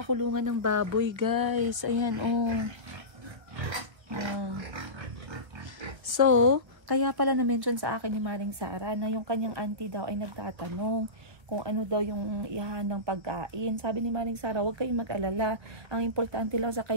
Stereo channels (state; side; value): late; left; 1.3 ms